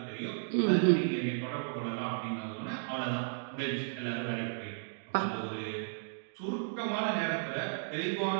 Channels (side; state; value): left; silent; digital silence